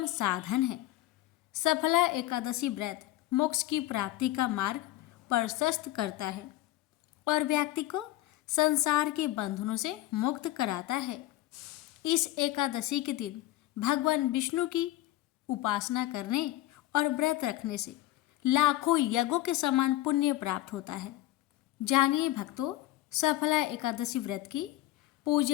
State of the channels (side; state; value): right; quieter; 15.7 dB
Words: साधन है। सफला एकादशी व्रत मोक्ष की प्राप्ति का मार्ग प्रशस्त करता है और व्यक्ति को संसार के बंधनों से मुक्त कराता है। इस एकादशी के दिन भगवान विष्णु की उपासना करने और व्रत रखने से लाखों यज्ञों के समान पुण्य प्राप्त होता है। जानिए भक्तों, सफला एकादशी व्रत की